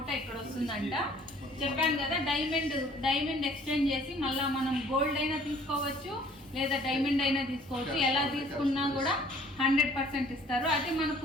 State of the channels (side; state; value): both; normal; correlation 0.55